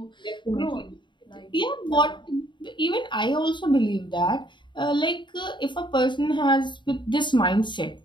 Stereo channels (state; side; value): late; right; 0.23 ms